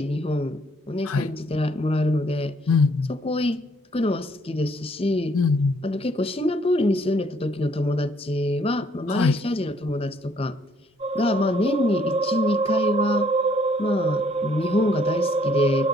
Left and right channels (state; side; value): normal; both; correlation 0.65